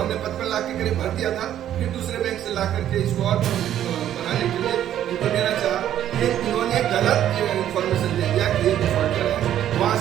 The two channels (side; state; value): left; quieter; 11.2 dB